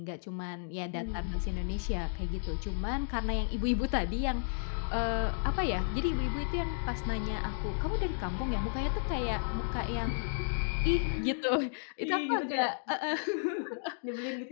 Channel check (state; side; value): silent; right; digital silence